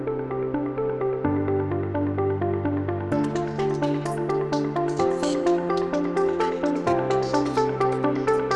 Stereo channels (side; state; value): both; identical; correlation 1.00